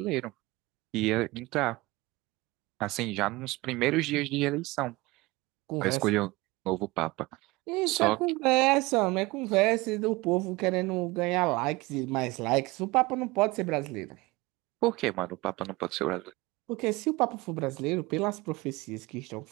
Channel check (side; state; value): left; quieter; 22.0 dB